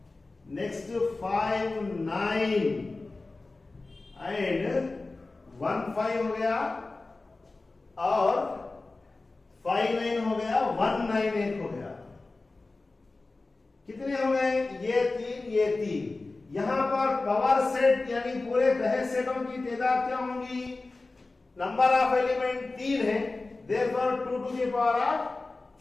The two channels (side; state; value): right; quieter; 3.4 dB